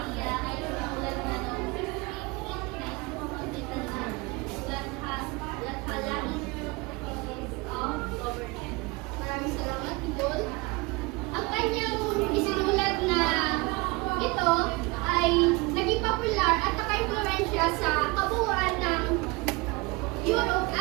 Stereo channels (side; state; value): left; quieter; 25.1 dB